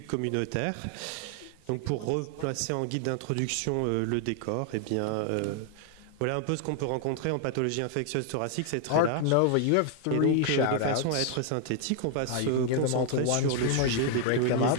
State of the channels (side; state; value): both; different; correlation 0.00